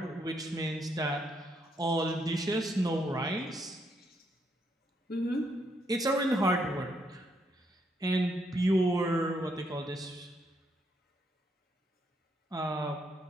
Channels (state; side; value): normal; both; correlation 0.75